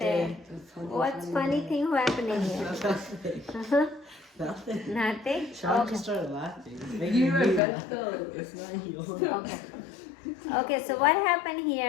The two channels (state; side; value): drops out; right; at 7.6 s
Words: What's funny thing happening here? Nothing. Nothing? Sean Okay. just started laughing. You were best It's not yours. Okay. Okay, so what happened